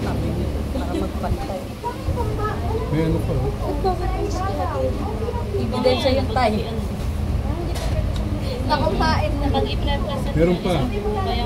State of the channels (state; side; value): identical; both; correlation 1.00